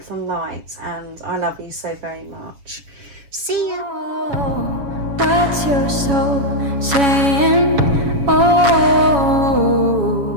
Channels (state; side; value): late; left; 7.1 ms